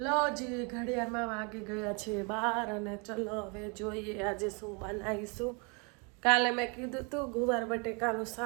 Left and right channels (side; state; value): left; quieter; 33.1 dB